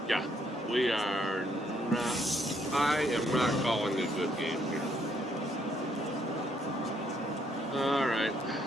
Yeah, we are not. I am not calling a good game here. All right.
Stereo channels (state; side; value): normal; both; correlation 0.70